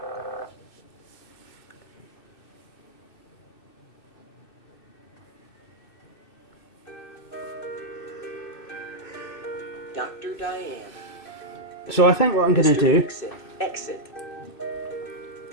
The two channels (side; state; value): right; late; 2.6 ms